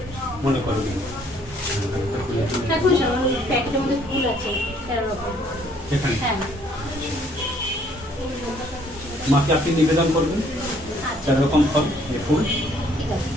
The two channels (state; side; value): normal; both; correlation 0.63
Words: মনে করবি এখানে মাকে আপনি নিবেদন করবেন 4 রকম ফল ফুল।